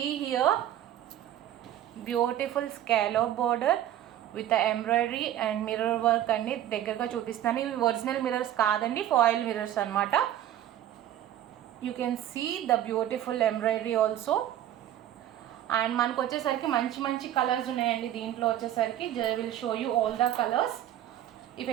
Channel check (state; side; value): quieter; left; 11.9 dB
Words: here beautiful scallop border with embroidery and mirror work అండి. దగ్గరగా చూపిస్తాను. ఇవి ఒరిజినల్ మిర్రర్స్ కాదండి, ఫాయిల్ మిర్రర్స్ అనమాట. You can see the beautiful embroidery also. And మనకు వచ్చేసరికి మంచి మంచి కలర్స్ ఉన్నాయండి దీంట్లో వచ్చేసరికి. Will show you all the colours. If